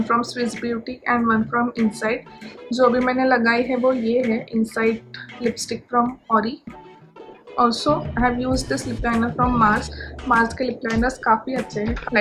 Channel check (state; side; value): identical; both; correlation 1.00